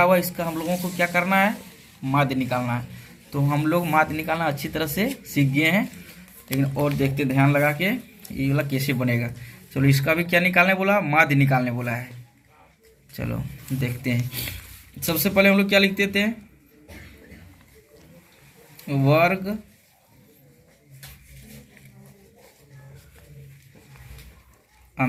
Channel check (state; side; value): identical; both; correlation 1.00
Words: हुआ है इसका हम लोगों को क्या करना है, माध्य निकालना है। तो हम लोग माध्य निकालना अच्छी तरह से सीख गए हैं, लेकिन और देखते ध्यान लगा के ये वाला कैसे बनेगा। चलो इसका भी क्या निकालने बोला, माध्य निकालने बोला है। चलो देखते हैं। सबसे पहले हम लोग क्या लिखते थे, वर्ग